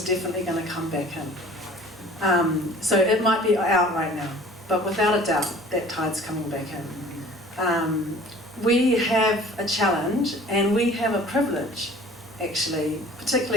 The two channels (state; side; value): normal; both; correlation 0.47